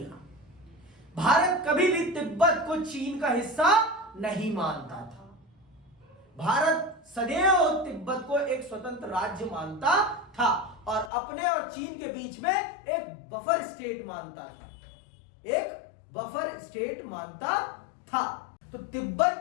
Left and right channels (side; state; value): right; drops out; at 11.1 s